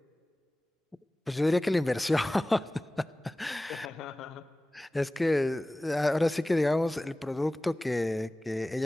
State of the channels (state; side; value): normal; both; correlation 0.98